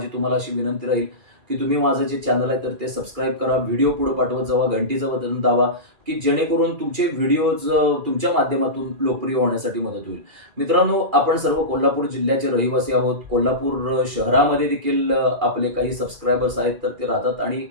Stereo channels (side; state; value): left; late; 2.3 ms